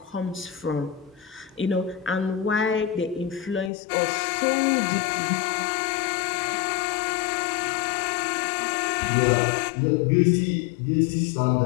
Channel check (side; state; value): right; drops out; at 3.7 s